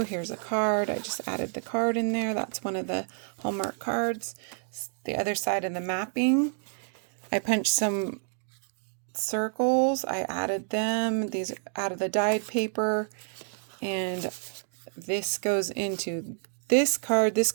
Here's a card. I just added the card in there. That's one of the Hallmark cards. The other side of the mapping. I punched some circles. I added them. These out of the dyed paper. And this goes into this card. This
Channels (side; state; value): left; silent; 59 dB below the other